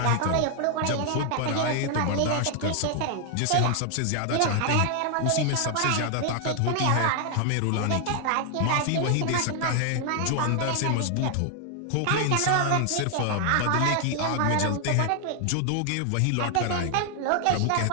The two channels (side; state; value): both; different; correlation 0.00